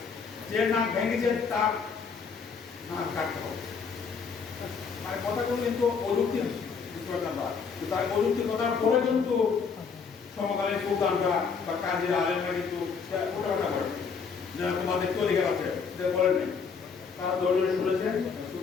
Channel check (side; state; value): right; quieter; 5.7 dB